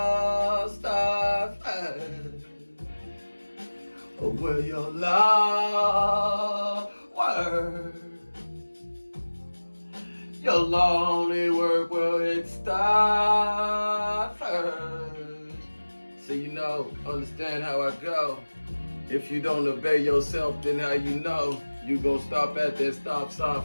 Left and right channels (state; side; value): inverted; both; correlation -1.00